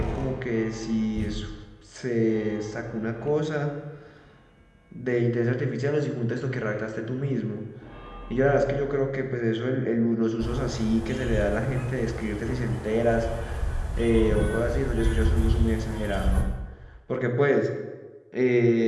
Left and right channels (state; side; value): identical; both; correlation 1.00